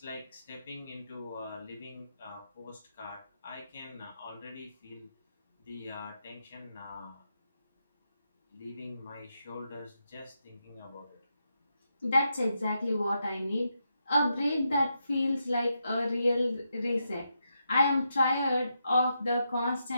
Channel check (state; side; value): inverted; both; correlation -0.83